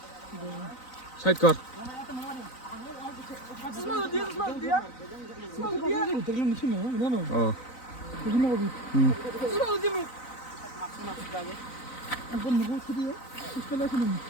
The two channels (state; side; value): late; right; 3.9 ms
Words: Side kar. Small dia. Terlalu mesin ya, mana? Oh. Begini lagi. Small dia mo. Ang ganda mo dia. Ispala sini.